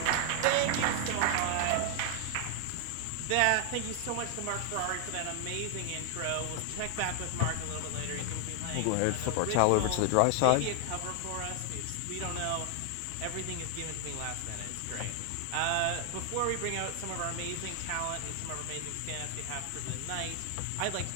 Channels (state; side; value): different; both; correlation 0.00